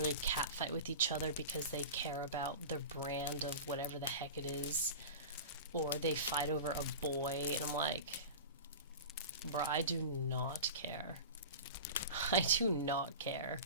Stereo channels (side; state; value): both; inverted; correlation -0.31